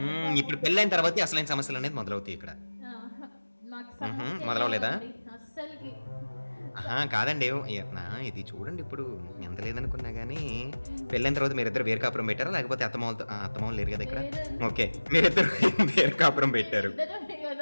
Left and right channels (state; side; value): inverted; both; correlation -1.00